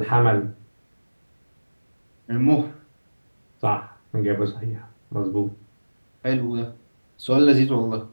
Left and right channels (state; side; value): inverted; both; correlation -1.00